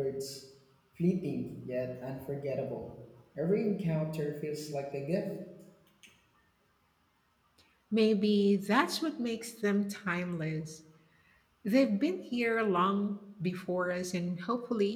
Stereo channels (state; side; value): identical; both; correlation 1.00